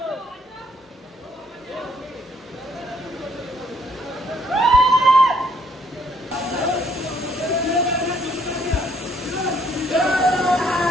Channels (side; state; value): both; normal; correlation 0.66